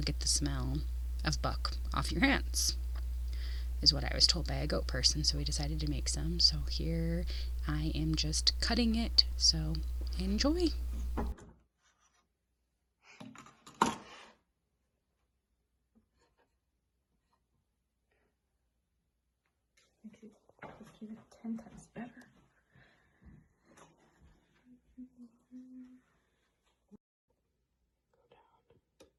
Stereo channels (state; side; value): identical; both; correlation 1.00